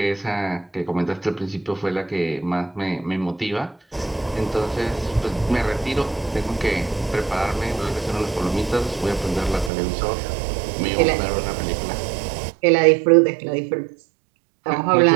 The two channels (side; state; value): left; drops out; at 9.7 s